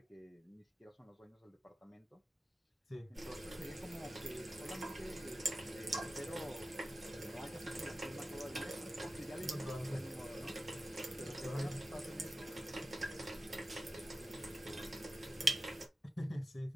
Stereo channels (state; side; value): normal; both; correlation 0.93